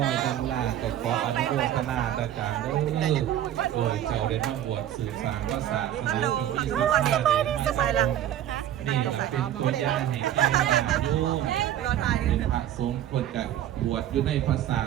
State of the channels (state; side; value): quieter; left; 11.5 dB